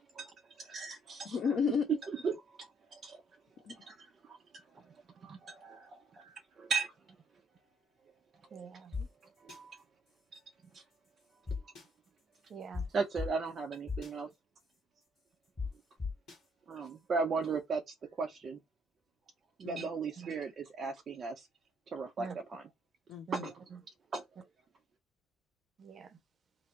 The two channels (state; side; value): normal; both; correlation 0.68